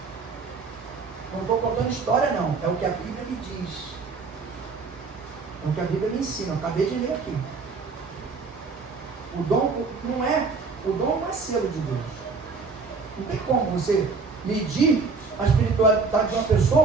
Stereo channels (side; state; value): left; quieter; 4.5 dB